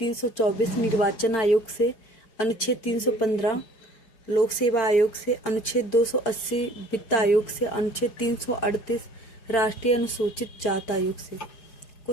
निर्वाचन आयोग से, अनुच्छेद 315 लोक सेवा आयोग से, अनुच्छेद 280 वित्त आयोग से, अनुच्छेद 338 राष्ट्रीय अनुसूचित जाति आयोग से।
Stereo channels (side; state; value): right; late; 4.9 ms